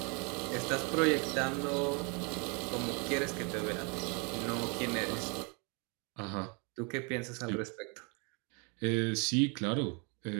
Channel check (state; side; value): quieter; left; 33.5 dB